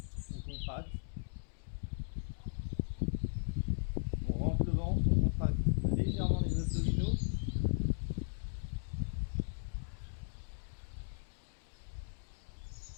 On contracte. On rentre le ventre, on contracte légèrement les abdominaux.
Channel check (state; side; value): silent; right; digital silence